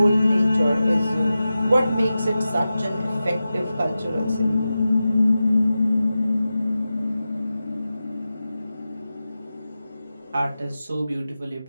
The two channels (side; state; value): both; inverted; correlation -0.93